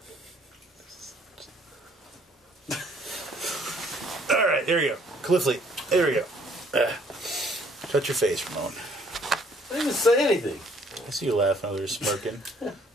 All right, there we go. Cliffley, there we go. Shut your face, Ramon. I didn't even say anything. I see you laughing over there, smirking. Your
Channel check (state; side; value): normal; both; correlation 0.61